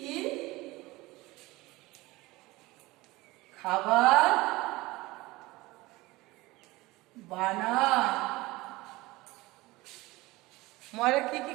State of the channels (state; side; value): quieter; left; 20.6 dB